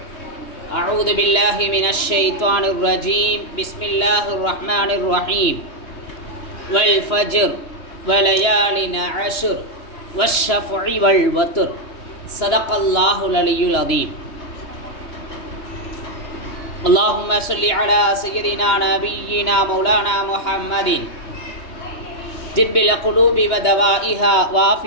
أعوذ بالله من الشيطان الرجيم. بسم الله الرحمن الرحيم. والفجر وليال عشر والشفع والوتر صدق الله العلي العظيم. اللهم صل على سيدنا نبينا مولانا محمد طب القلوب ودوائها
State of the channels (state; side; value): late; right; 3.2 ms